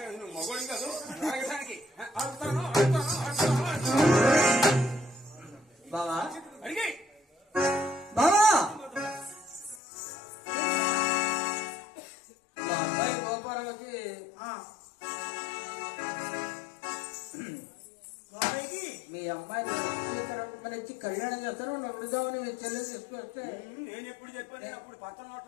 నువ్వు మొగోడి కాదు అడగడానికి. బావా అడిగాయి బావా, మా అబ్బాయి గోపారావుకి మీ అమ్మాయిని వచ్చి కళ్యాణం చేస్తారు నడుదామని మీ చెల్లి తీసుకొస్తే నేను ఎప్పుడు చెప్పాను. నేను అప్పుడు పత్రం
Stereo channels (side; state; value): right; drops out; at 9.8 s